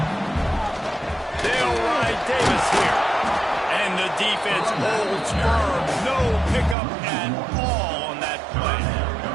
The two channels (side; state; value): left; drops out; at 6.8 s